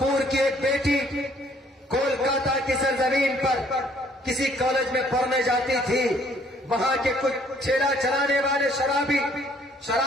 کی ایک بیٹی کولکاتہ کی سرزمین پر کسی کالج میں پڑھنے جاتی تھی. وہاں کے کچھ ٹھیلا چلانے والے شرابی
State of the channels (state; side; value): normal; both; correlation 0.62